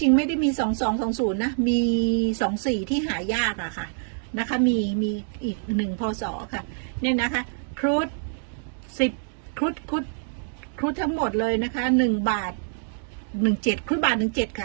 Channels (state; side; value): silent; left; digital silence